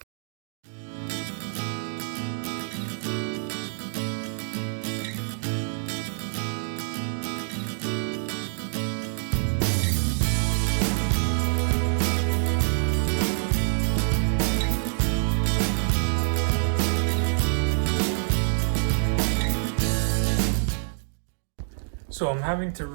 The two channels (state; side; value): silent; left; 61 dB below the other